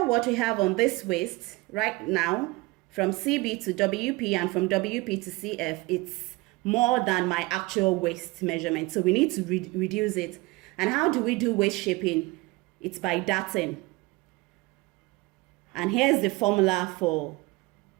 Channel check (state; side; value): quieter; left; 22.7 dB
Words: what we have on this waist right now, from CB to WP and from WP to CF, it's more than my actual waist measurement. So we need to reduce it. And how do we do waist shaping? It's by darting. And here's the formula for